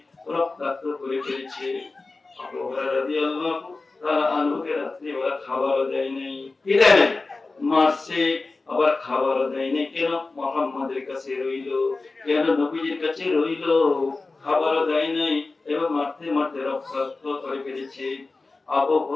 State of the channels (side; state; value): right; quieter; 3.6 dB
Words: রক্তাক্ত করে ফেলেছে। আবু হুরায়রা রাদিয়াল্লাহু তাআলা আনহুকে রাত্রে ওরা খাবারও দেয় নাই। কি দেয় নাই? মারছে, আবার খাবারও দেয় নাই। কেন? মুহাম্মাদের কাছে রইলো, কেন নবীজির কাছে রইলো, খাবারও দেয় নাই এবং মারতে মারতে রক্তাক্ত করে ফেলেছে। আবু